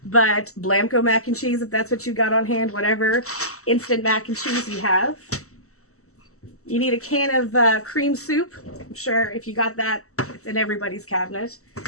but Blamco mac and cheese, if that's what you got on hand, whatever instant mac and cheese you have. You need a can of cream soup. I'm sure if you got that, it's in everybody's cabinet.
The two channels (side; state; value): right; late; 0.64 ms